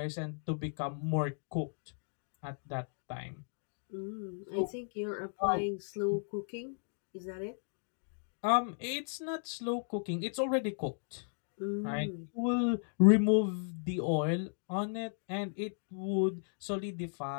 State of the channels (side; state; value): right; silent; digital silence